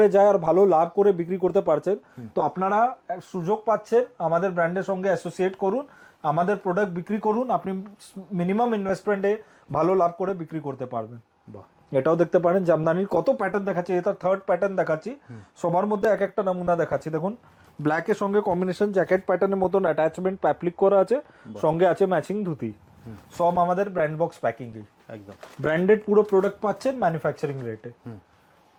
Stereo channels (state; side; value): identical; both; correlation 1.00